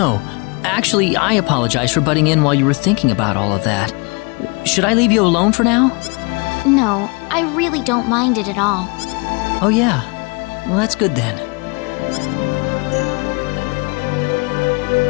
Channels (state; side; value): quieter; right; 30.5 dB